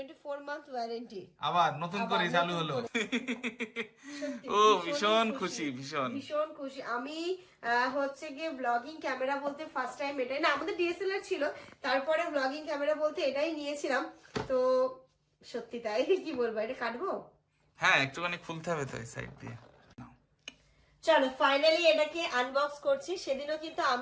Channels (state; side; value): identical; both; correlation 1.00